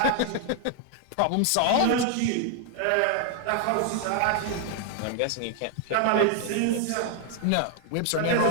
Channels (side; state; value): both; different; correlation 0.00